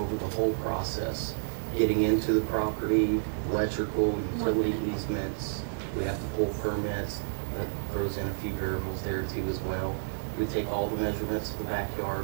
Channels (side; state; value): left; silent; digital silence